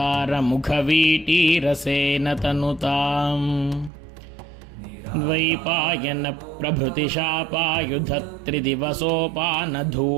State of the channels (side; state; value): left; drops out; at 3.9 s